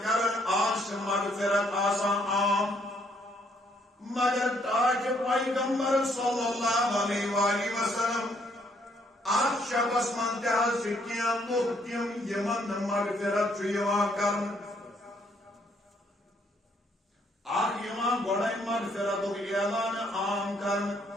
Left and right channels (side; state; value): both; normal; correlation 0.68